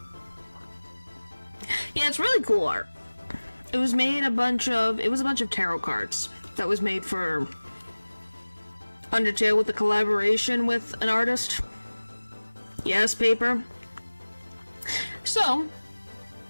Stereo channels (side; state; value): both; inverted; correlation -1.00